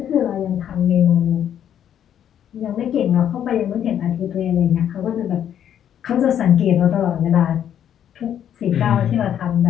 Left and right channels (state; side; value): quieter; right; 9.8 dB